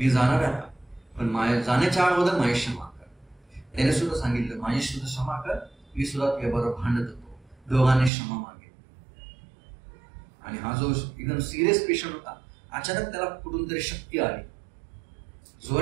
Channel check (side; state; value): left; drops out; at 8.1 s